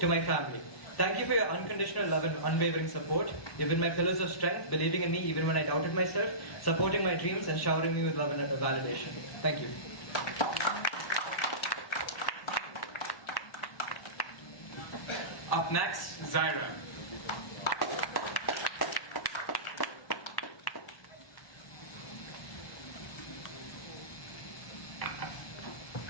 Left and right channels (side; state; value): right; late; 1.1 ms